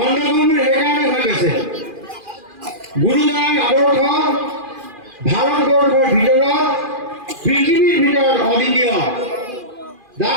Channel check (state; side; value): late; left; 2.4 ms